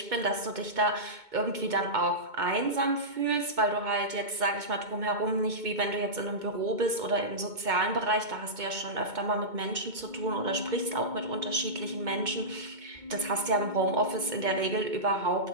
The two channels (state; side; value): late; left; 2.2 ms